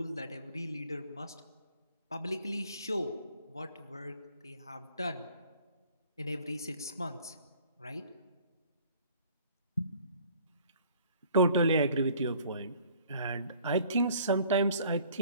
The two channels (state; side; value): inverted; both; correlation -0.54